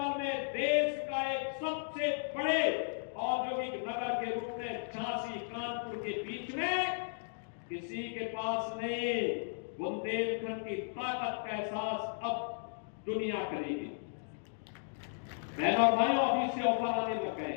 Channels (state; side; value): silent; right; digital silence